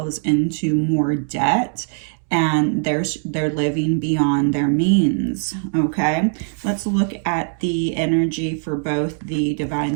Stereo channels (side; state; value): left; silent; 63 dB below the other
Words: into more debt and they're living beyond their means. Okay, let's look at the energy for both the divine